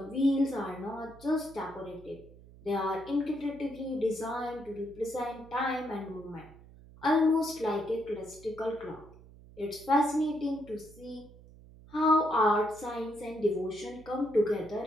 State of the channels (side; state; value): right; noise; hum, 21 dB below the sound